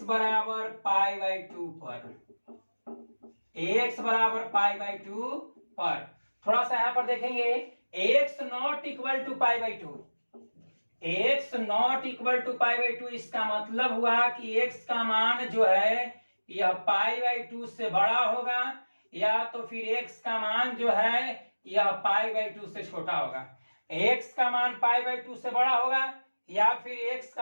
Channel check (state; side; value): inverted; both; correlation -1.00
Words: बराबर पाई बाई 2 पर, x बराबर पाई बाई 2 पर थोड़ा सा यहां पर देखेंगे, x not equal to pi by 2, x not equal to pi by 2, इसका मतलब हुआ कि x का मान जो है यह पाई बाई 2 से बड़ा होगा, या तो फिर x का मान जो है यह पाई बाई 2 से छोटा होगा। x का मान पाई बाई 2 से बड़ा होगा, या फिर x